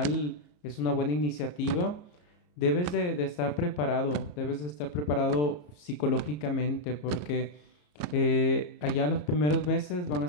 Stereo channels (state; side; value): late; right; 34 ms